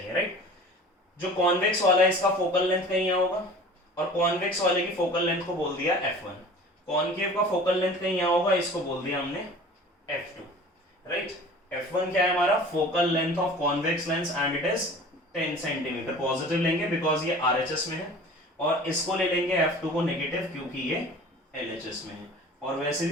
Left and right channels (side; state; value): both; normal; correlation 0.42